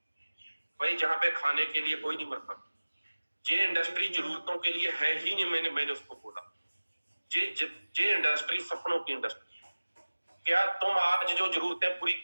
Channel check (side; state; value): both; inverted; correlation -1.00